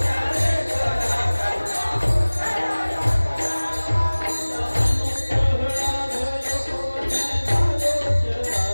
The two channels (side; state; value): both; inverted; correlation -1.00